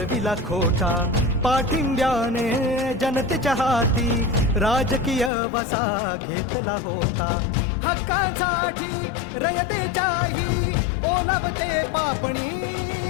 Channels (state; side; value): drops out; right; at 5.3 s